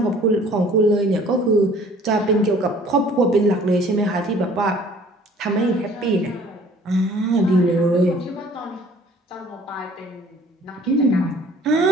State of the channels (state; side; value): normal; both; correlation 0.53